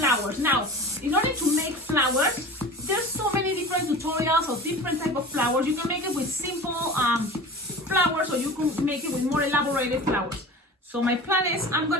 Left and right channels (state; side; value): normal; both; correlation 0.36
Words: Now, in order to make flowers, there's so many different tutorials of different type of flowers. You can make it with simple flowers, or you can make it with more elaborated flowers. So my plan is I'm